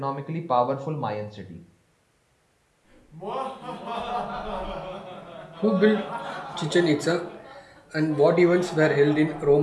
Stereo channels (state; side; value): identical; both; correlation 1.00